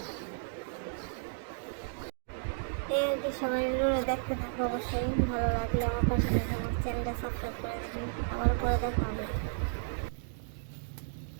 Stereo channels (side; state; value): left; silent; digital silence